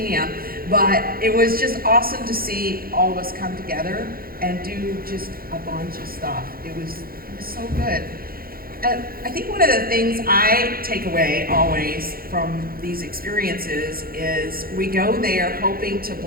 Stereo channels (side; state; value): left; late; 0.43 ms